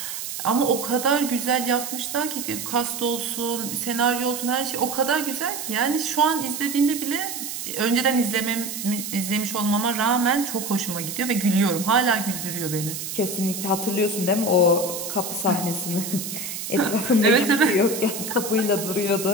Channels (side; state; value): right; noise; hiss, 6 dB below the sound